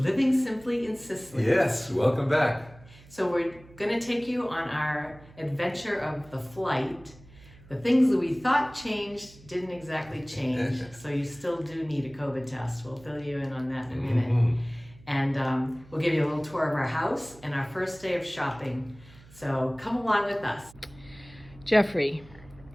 Simply in Sicily. Yes, welcome back. So we're going to take you on our adventure of the flight. The things that we thought changed didn't exactly change, so you still do need a COVID test. We'll fill you in on that in a minute. And we'll give you a little tour of our house and our first day of shopping. So come along with us. Jeffrey,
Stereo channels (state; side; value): noise; right; hum, 23 dB below the sound